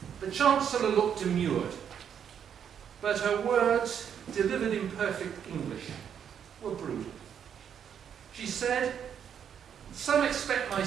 The Chancellor looked demurred, but her words, delivered in perfect English, were brutal. She said, "Some expect my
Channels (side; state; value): left; quieter; 8.3 dB